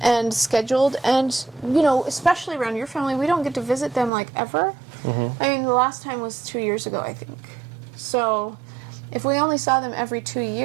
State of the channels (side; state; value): left; drops out; at 4.1 s